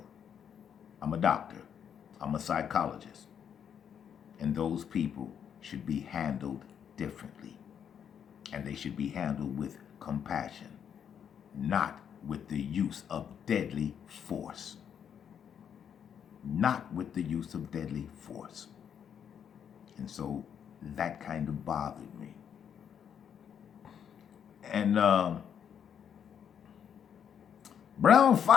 I'm a doctor. I'm a psychologist. And those people should be handled differently. And they should be handled with compassion, not with the use of deadly force. Not with the use of deadly force. And so that kind of bothered me. And Brown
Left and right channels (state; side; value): quieter; right; 8.3 dB